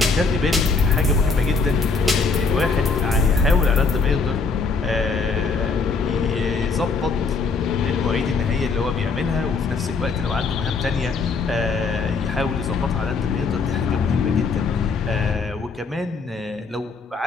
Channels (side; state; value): right; quieter; 4.5 dB